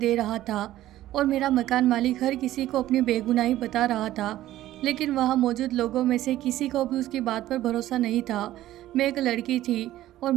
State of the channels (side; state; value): left; quieter; 14.3 dB